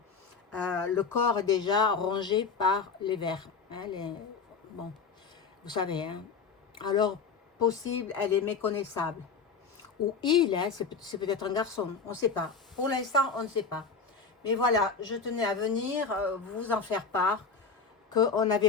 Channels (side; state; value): right; quieter; 5.2 dB